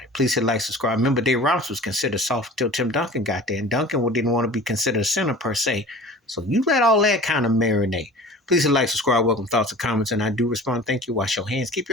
Please hit like, subscribe. Remember, Dave Robinson was considered soft until Tim Duncan got there, and Duncan didn't want to be considered a center per se. So you let all that kind of marinate. Please hit like, subscribe, welcome thoughts and comments, and I do respond. Thank you. Wash your hands. Keep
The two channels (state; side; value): normal; both; correlation 0.41